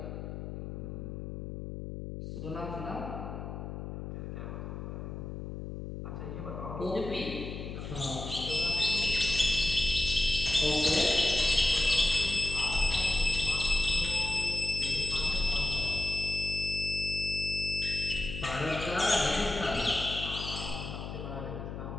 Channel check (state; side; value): noise; left; hum, 7 dB below the sound